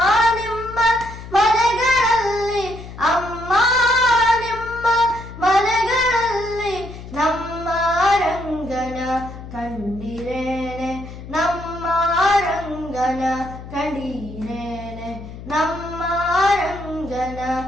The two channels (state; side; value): noise; left; hum, 13 dB below the sound